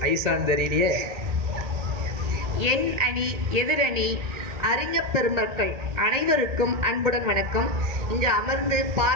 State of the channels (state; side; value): late; left; 1.8 ms